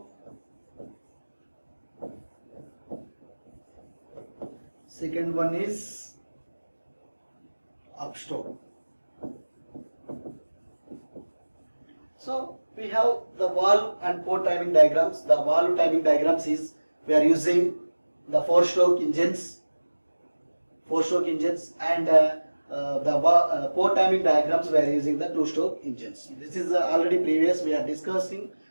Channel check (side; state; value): both; inverted; correlation -1.00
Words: second one is upstroke. So we have the valve and port timing diagrams. The valve timing diagrams is we are using the 4-stroke engines, and the port timing diagrams we are using the 2-stroke engines. This is already previous we are discussed.